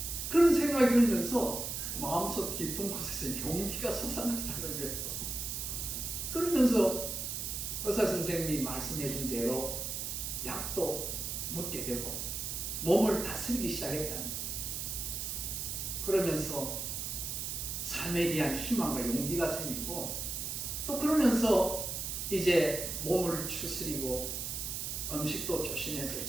그런 생각이 들면서 마음속 깊은 곳에서 용기가 솟아났다는 거예요. 그러면서 의사 선생님이 말씀해 준 대로 약도 묻게 되고 몸을 다스리기 시작했다는 거예요. 그러면서 삶에 대한 희망과 용기가 생기고 또 그러면서 이제 몸을 추스리고 음식도 조심해서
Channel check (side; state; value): right; noise; hiss, 3 dB below the sound